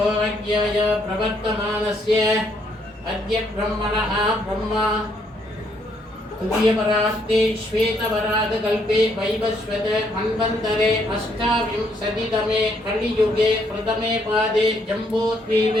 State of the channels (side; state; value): both; normal; correlation 0.71